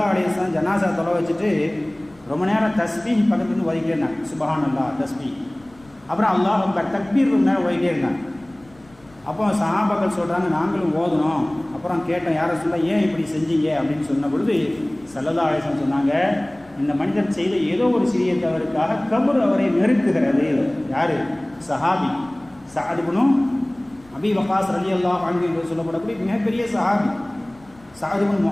அலைஹி வஸல்லம் ஜனாசா தொலை வச்சுட்டு ரொம்ப நேரம் தஸ்பீஹ் பக்கத்துலேருந்து ஓதிக்கிட்டே இருந்தாங்க. சுப்ஹானல்லாஹ் தஸ்பீஹ், அப்புறம் அல்லாஹ் அக்பர் தக்பீர் நேரம் ஓதிக்கிட்டே இருந்தாங்க. அப்போ சஹாபாக்கள் சொல்கிறாங்க, நாங்களும் ஓதணும். அப்புறம் கேட்டோம், யாரை சொல்ல ஏன் இப்படி செஞ்சீங்க அப்படின்னு சொன்ன பொழுது ஸல்லல்லாஹு அலைஹி வஸல்லம் சொன்னாங்க, இந்த மனிதர் செய்த ஏதோ ஒரு சிறிய தவறுக்காக கபர் அவரை நெருக்குகிறது. யார்? சஹாபி சஅத் இப்னு அபீ வக்காஸ் ரலியல்லாஹு அன்ஹு என்று சொல்லப்படக்கூடிய மிகப்பெரிய சஹாபி சஅத் இப்னு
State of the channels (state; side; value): noise; left; rumble, 28 dB below the sound